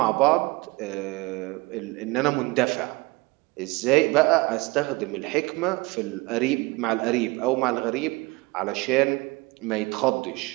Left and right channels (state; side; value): quieter; left; 24.1 dB